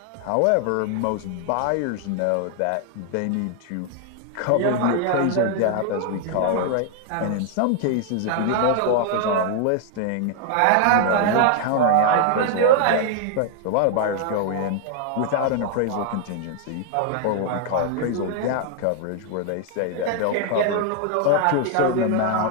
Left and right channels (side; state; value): both; different; correlation 0.00